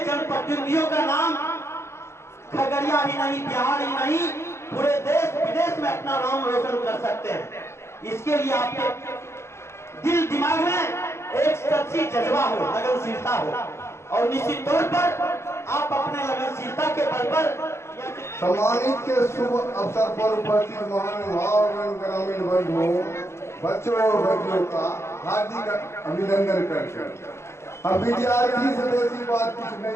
जनप्रतिनिधियों का नाम खगड़िया ही नहीं, बिहार ही नहीं, पूरे देश विदेश में अपना नाम रोशन कर सकते हैं। इसके लिए आपके दिल दिमाग में एक सच्ची जज्बा हो, लगनशीलता हो और निश्चित तौर पर आप अपने लगनशीलता के बल पर सम्मानित के शुभ अवसर पर उपस्थित महानुभाव ग्रामीण बंधुओं, बच्चों और बच्चियों का हार्दिक अभिनंदन करते हैं। हम विद्यार्थी से बेसी बात कुछ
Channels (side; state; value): right; late; 0.13 ms